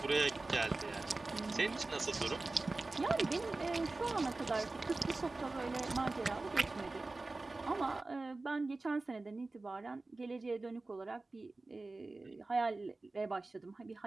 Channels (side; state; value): left; quieter; 3.2 dB